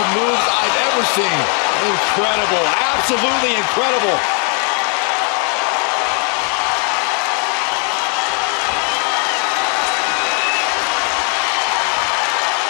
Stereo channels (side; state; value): right; quieter; 39.8 dB